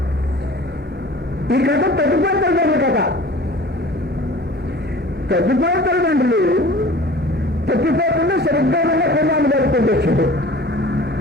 ఈ కథ తగ్గిపోయిన తల్లిదండ్రుల కథ. తగ్గిపోయిన తల్లిదండ్రులు తప్పిపోకుండా సరిగ్గా ఉన్న కుమారుని జరుపుకుంటూ వచ్చాడు.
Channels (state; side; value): normal; both; correlation 0.44